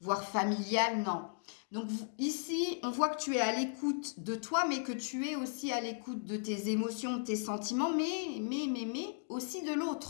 familiale, non. Donc ici, on voit que tu es à l'écoute de toi, mais que tu es aussi à l'écoute de tes émotions, de tes sentiments, mais aussi de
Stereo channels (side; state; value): right; silent; digital silence